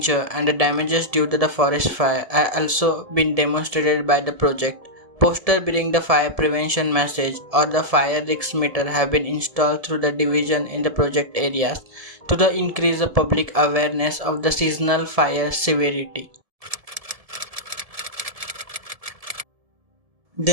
and the damages due to the forest fire have also been demonstrated by the project. Posters bearing the fire prevention message or the fire risk meter have been installed through the division in the project areas to increase the public awareness of the seasonal fire severity.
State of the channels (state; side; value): late; left; 1.7 ms